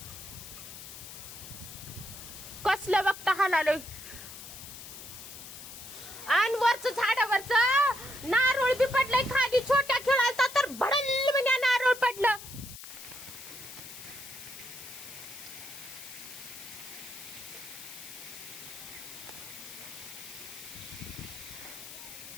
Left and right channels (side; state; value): left; noise; hiss, 13 dB below the sound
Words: कसलं बघता हालालोय. आणि वरच झाडावरच नारळ बी पडलंय खाली. छोट्या खेळाचा तर भडल म्हणजे नारळ पडलं.